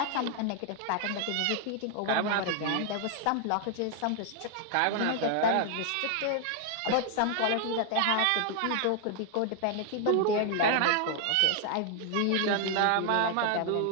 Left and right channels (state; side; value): different; both; correlation 0.00